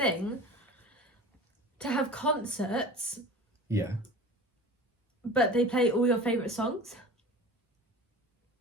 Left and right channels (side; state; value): both; normal; correlation 0.37